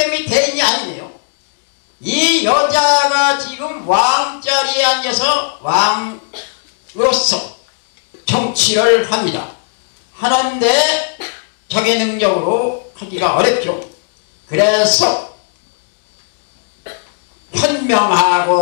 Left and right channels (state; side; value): silent; right; digital silence